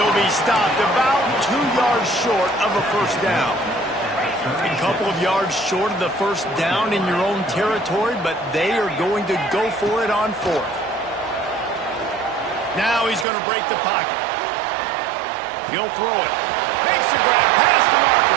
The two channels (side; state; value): left; drops out; at 13.2 s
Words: be stopped about 2 yards short of a first down. A couple of yards short of the first down in your own territory, but they are going to go for it on fourth. Now he's going to break the pocket. He'll throw it. Makes the grab past the